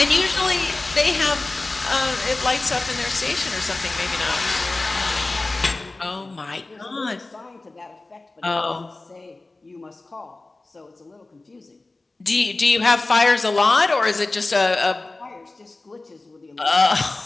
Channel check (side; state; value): right; quieter; 3.2 dB